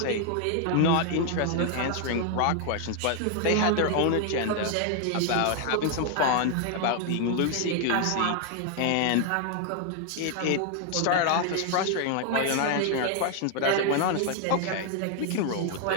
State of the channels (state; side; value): different; both; correlation 0.00